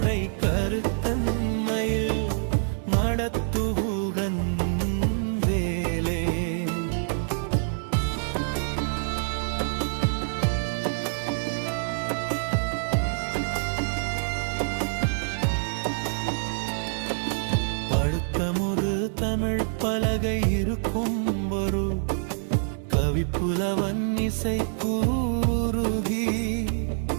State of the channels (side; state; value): left; silent; 61 dB below the other